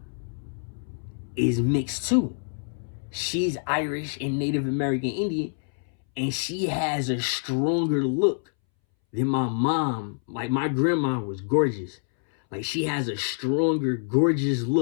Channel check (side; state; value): right; silent; 61 dB below the other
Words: is mixed too. She's Irish and Native American Indian, and she has a stronger look than my mom. Like, my grandma was gorgeous. Like, she has a stronger, gorgeous